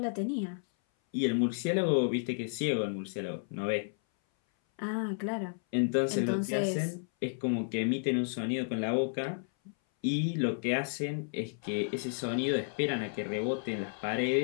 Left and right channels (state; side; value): silent; right; 56 dB below the other